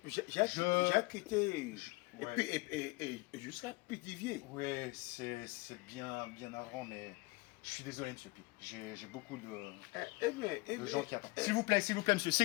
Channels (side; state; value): right; quieter; 24.4 dB